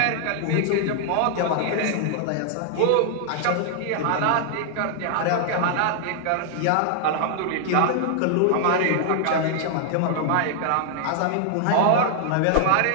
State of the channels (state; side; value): different; both; correlation -0.01